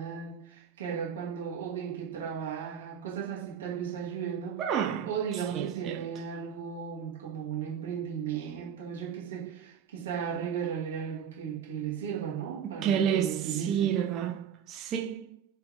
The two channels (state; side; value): quieter; left; 8.1 dB